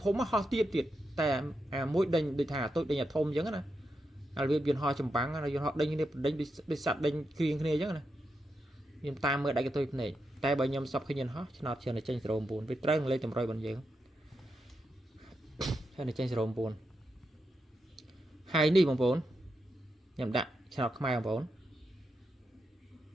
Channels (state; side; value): normal; both; correlation 0.85